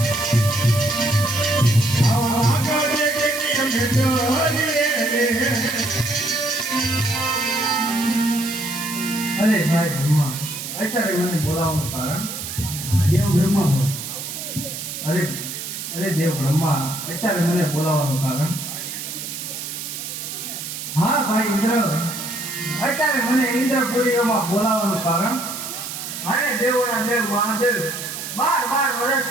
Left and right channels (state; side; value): noise; right; hiss, 7 dB below the sound